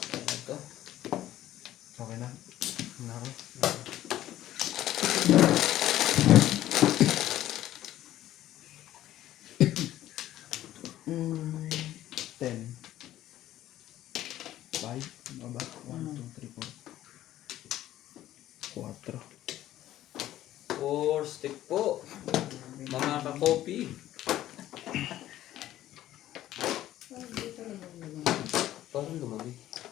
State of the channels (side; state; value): right; quieter; 13.6 dB